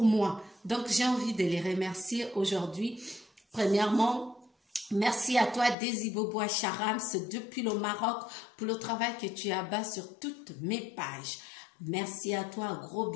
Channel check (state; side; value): drops out; right; at 5.8 s